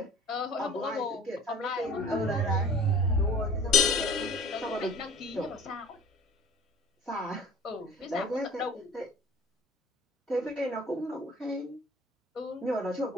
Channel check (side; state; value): both; normal; correlation 0.45